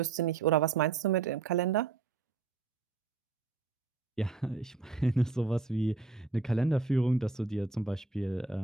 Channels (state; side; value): quieter; left; 4.1 dB